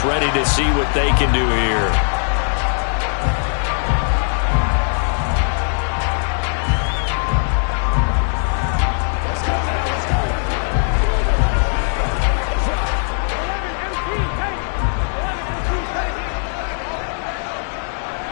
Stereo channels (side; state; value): right; silent; digital silence